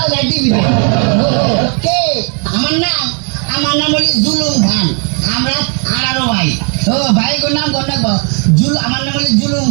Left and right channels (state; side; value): quieter; left; 39.1 dB